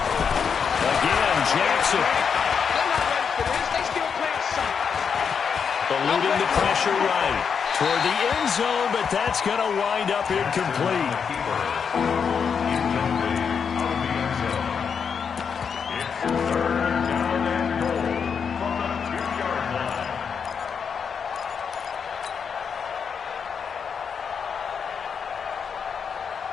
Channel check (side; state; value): right; quieter; 6.6 dB